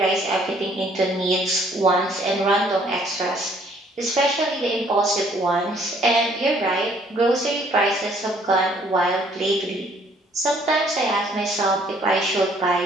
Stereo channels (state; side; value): normal; both; correlation 0.62